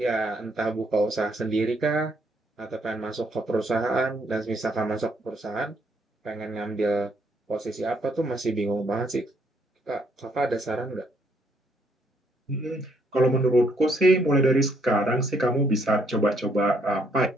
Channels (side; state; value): both; normal; correlation 0.70